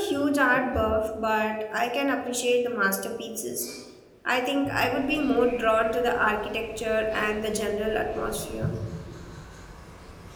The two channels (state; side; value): identical; both; correlation 1.00